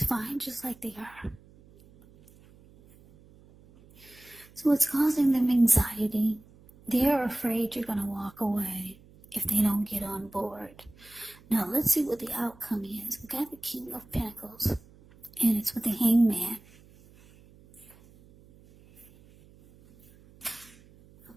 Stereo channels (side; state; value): right; noise; hum, 25 dB below the sound